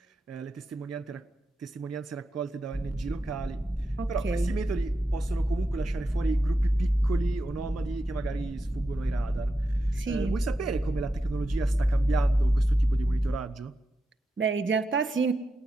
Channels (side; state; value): both; normal; correlation 0.88